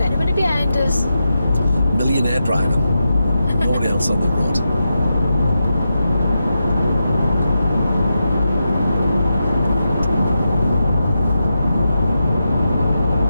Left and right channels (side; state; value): both; inverted; correlation -0.88